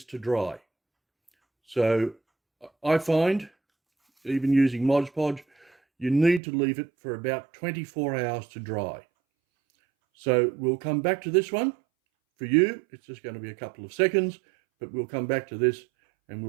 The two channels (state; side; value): drops out; left; at 6.4 s